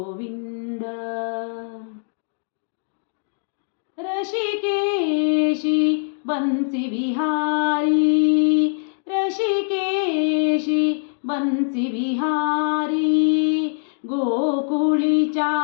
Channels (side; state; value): right; silent; digital silence